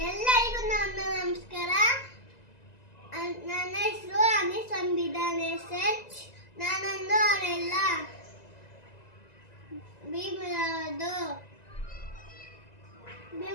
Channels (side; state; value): right; late; 2.0 ms